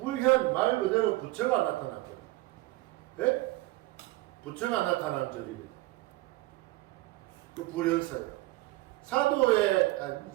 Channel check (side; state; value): left; quieter; 19.7 dB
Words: 말 그대로 부처가 나타났거든요. 예? 부처가 나타나는 절이거든요. 그 불현사예요. 사도의,